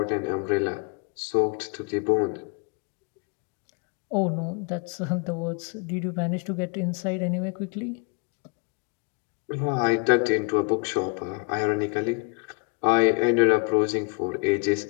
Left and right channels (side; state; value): right; quieter; 31.7 dB